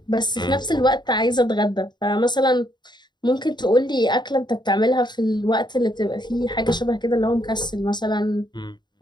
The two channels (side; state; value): right; late; 0.21 ms